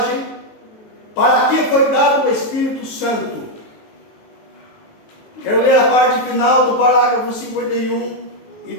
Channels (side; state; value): right; late; 19 ms